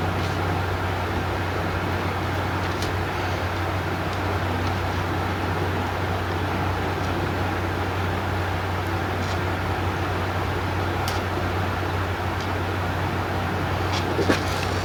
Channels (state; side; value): identical; both; correlation 1.00